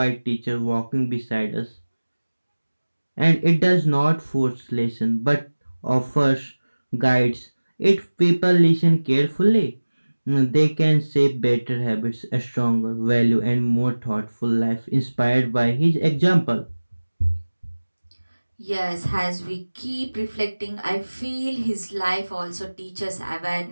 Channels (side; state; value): both; inverted; correlation -1.00